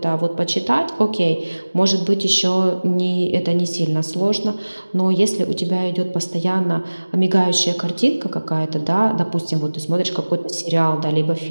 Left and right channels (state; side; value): inverted; both; correlation -1.00